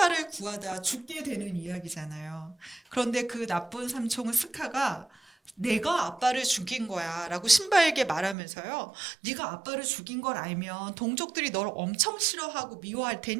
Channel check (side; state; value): left; drops out; at 8.3 s